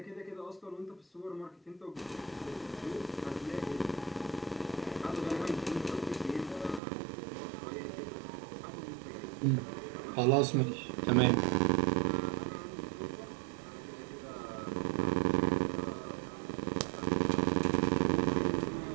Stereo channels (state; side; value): drops out; left; at 6.8 s